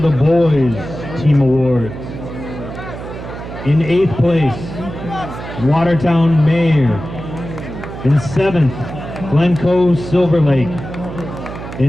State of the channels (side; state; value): right; noise; hum, 10 dB below the sound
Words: boys team awards. In 8th place, Watertown Mayor. In 7th, Glencoe Silver Lake.